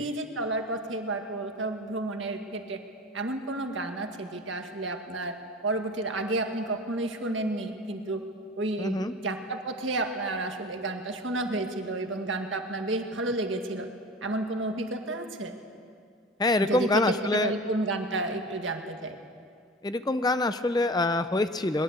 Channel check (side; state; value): both; normal; correlation 0.35